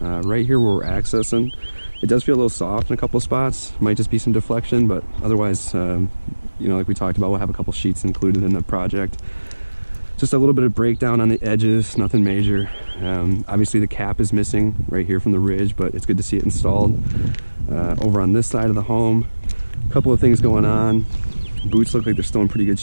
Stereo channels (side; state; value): both; inverted; correlation -1.00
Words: here where we're accessing, it does feel a little soft in a couple of spots. Might just be some deflection, but otherwise, like we talked about, we'll have a couple sheets included in the project. Just a little bit of breakdown on the edges, nothing major. Obviously the cap is missing right here from the ridge, but it's good to see it installed. Over on this side of the home, a couple of things going on. Boots look like they're still in pretty good